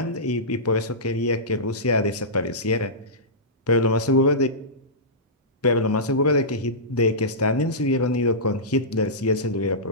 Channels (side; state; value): both; normal; correlation -0.17